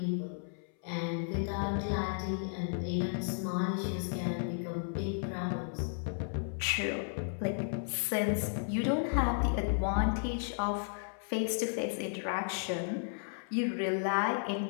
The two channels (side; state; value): right; silent; 55 dB below the other